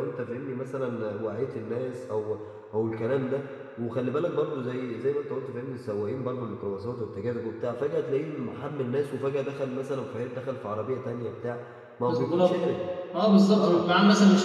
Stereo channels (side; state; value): both; identical; correlation 1.00